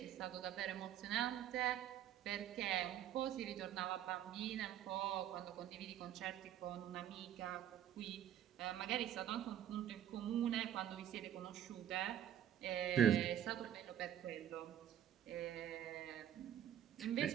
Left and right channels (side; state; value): left; quieter; 10.6 dB